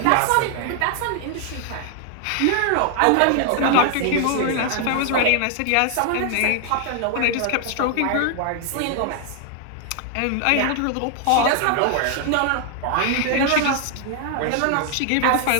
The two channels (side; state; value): both; different; correlation 0.00